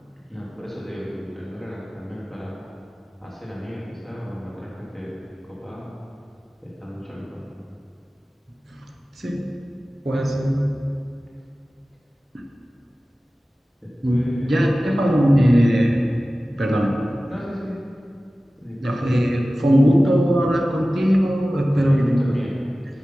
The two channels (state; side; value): normal; both; correlation 0.96